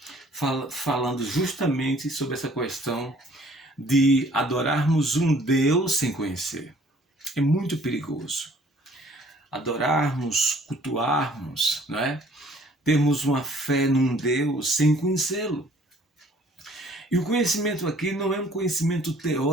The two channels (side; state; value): both; normal; correlation 0.57